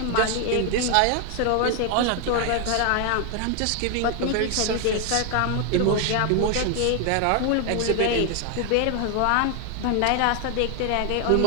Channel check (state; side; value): different; both; correlation 0.00